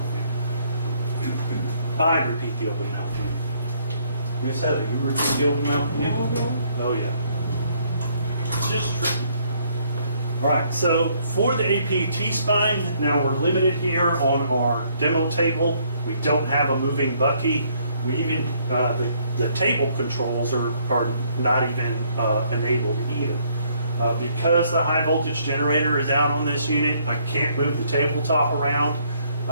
view. I repeat the open mouth view. Miss Heather, you repeat the open mouth view? Oh yeah. It's just tricky. All right, so for the AP T-spine, now we're limited here on our demo table. We don't have a moving bucky. We even, the table controls are not even enabled either. Because the high voltage generator is out on this unit, I can't move the tabletop around.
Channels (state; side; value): inverted; both; correlation -0.67